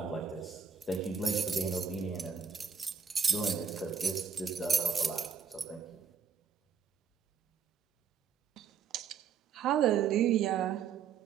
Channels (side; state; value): left; quieter; 6.5 dB